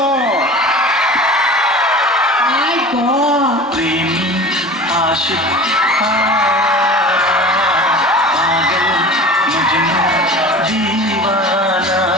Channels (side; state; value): both; normal; correlation 0.37